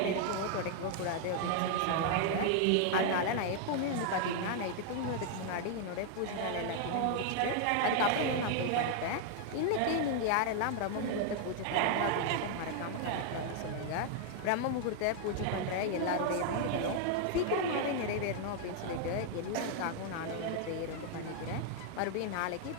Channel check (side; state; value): both; different; correlation 0.00